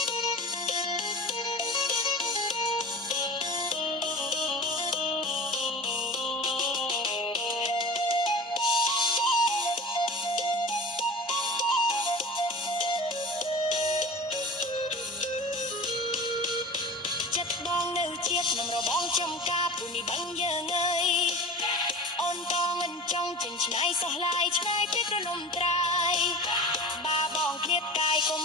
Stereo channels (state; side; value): normal; both; correlation 0.37